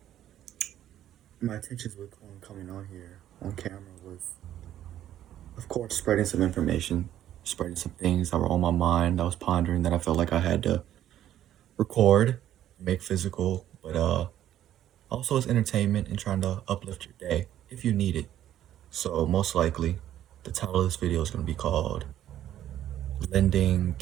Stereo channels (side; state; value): left; quieter; 11.9 dB